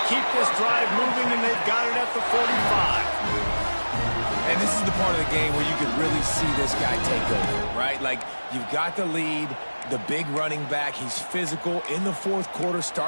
keep this drive moving, and they've got it at the 45. And this is the part of the game where you could really see this guy take over, right? Like, you've got the lead, the big running back. He's physical in the fourth quarter,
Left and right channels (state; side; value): inverted; both; correlation -1.00